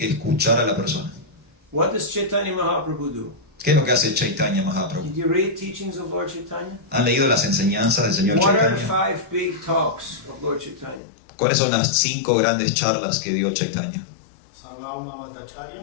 escuchar a la persona. What does Chaitanya Mahaprabhu do? ¿Qué es lo que hace Chaitanya Mahaprabhu? Did you read teachings of Lord Chaitanya? ¿Han leído las enseñanzas del señor What are the Chaitanya? 5 big talks of Lord Chaitanya? ¿Cuáles son las 5 grandes charlas que dio Chaitanya? Sarvabhauma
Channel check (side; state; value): right; drops out; at 11.0 s